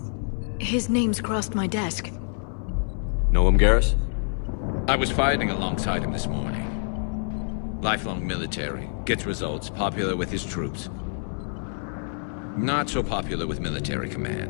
His name's crossed my desk. Know him, Garrus? I was fighting alongside him this morning. Lifelong military, gets results, popular with his troops. Not so popular with military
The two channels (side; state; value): right; silent; 61 dB below the other